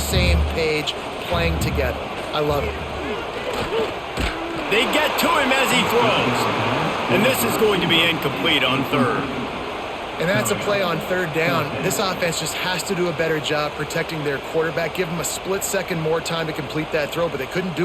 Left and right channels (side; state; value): both; identical; correlation 1.00